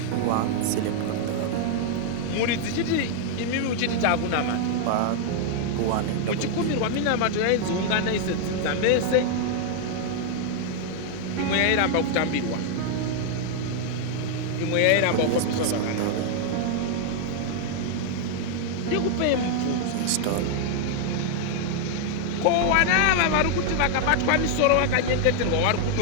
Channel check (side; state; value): both; different; correlation 0.00